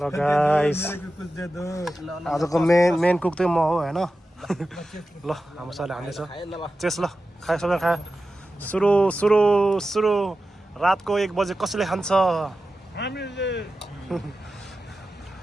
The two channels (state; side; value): normal; both; correlation 0.93